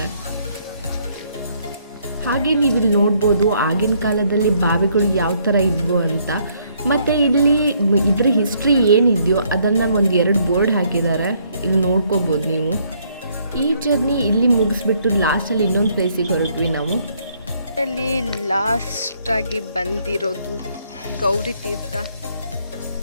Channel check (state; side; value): inverted; both; correlation -0.68